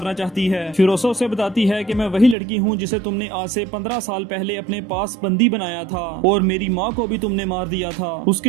चाहती है। फिरोसा उसे बताती है कि मैं वही लड़की हूँ जिसे तुमने आज से 15 साल पहले अपने पास बंदी बनाया था और मेरी माँ को भी तुमने मार दिया था।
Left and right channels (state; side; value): drops out; left; at 2.4 s